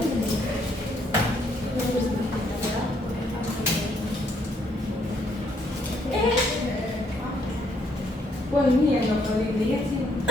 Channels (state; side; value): normal; both; correlation 0.71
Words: Wah ini yang gak paling lihat sih.